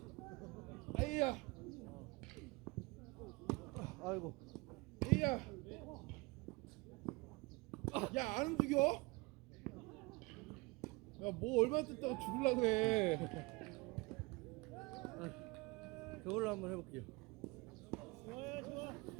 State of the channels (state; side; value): quieter; left; 24.6 dB